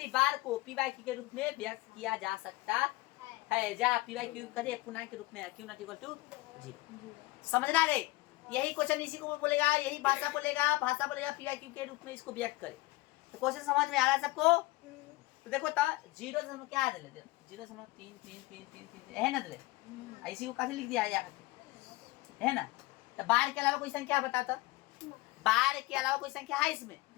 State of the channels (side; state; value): right; quieter; 20.6 dB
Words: बार को पीवाई क्यू के रूप में व्यक्त किया जा सकता है, जहाँ पीवाई क्यू कथी पूर्णांक के रूप में क्यू नॉट इक्वल टू 0। समझना रे, यही क्वेश्चन इसी को बोलेगा, यही भाषा बोलेगा पीवाई क्यू के रूप में इसको व्यक्त करे। तो क्वेश्चन समझ में आ रहा है सबको। तो देखो तो 0 क्या है 0.3 है ना, दले इसी को कैसे लिख दिया है ना। तो बार के अलावा कोई संख्या बताता, बार के अलावा कोई संख्या है इसमें,